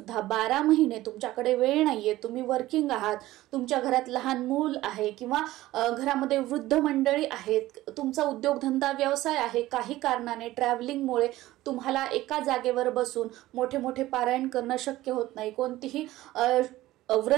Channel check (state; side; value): quieter; left; 16.4 dB